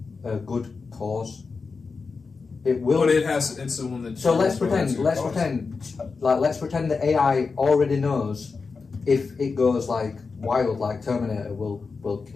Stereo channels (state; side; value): quieter; right; 4.7 dB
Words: a good cause. It will. But it's the one that. So let's pretend the AI already knows if it goes like wild, like Terminator will